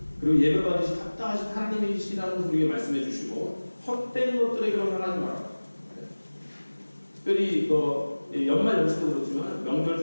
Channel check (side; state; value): both; inverted; correlation -1.00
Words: 그리고 예배받으실 합당하신 하나님이시라는 것을 우리에게 말씀해 주시고 헛된 것들에게로 향하지 마라. 특별히 연말 연시도 그렇지만 명절